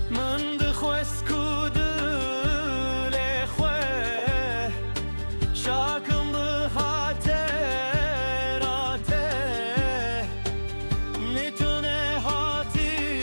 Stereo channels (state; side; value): inverted; both; correlation -1.00